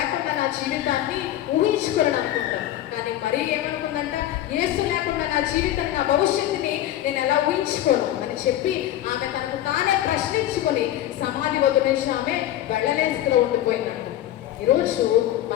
నా జీవితాన్ని ఊహించుకోలేను అనుకుంటాం. కానీ మరీ ఏమనుకుందంట, యేసు లేకుండా నా జీవితాన్ని, నా భవిష్యత్తుని నేను ఎలా ఊహించుకోను అని చెప్పి ఆమె తనకు తానే ప్రశ్నించుకొని సమాధి వద్ద నుంచి ఆమె వెళ్ళలేస్తూ ఉండిపోయిందంట. ఈరోజు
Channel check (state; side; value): quieter; right; 13.0 dB